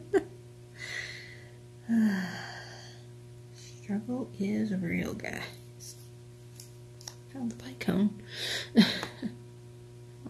Struggle is real, guys. Found the bicone.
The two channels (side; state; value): both; identical; correlation 1.00